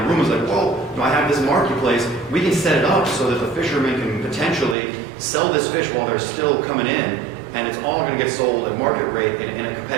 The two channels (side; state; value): left; drops out; at 4.8 s